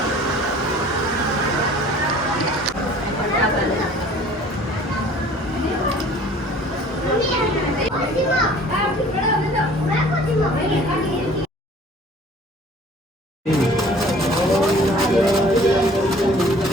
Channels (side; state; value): both; normal; correlation 0.50